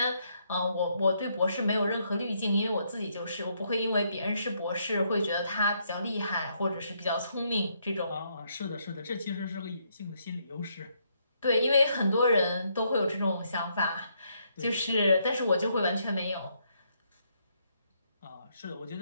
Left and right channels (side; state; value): both; inverted; correlation -0.74